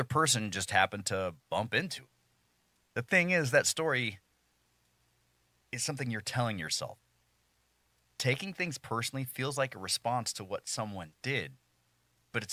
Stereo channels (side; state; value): both; identical; correlation 1.00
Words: person just happened to bump into it. The thing is, that story is something you're telling yourself. Taking things personally feels like a response to what someone did, but